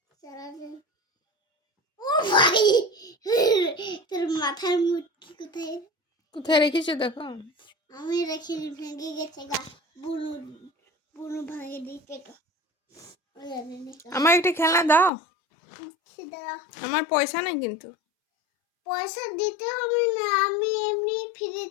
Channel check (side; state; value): right; drops out; at 15.1 s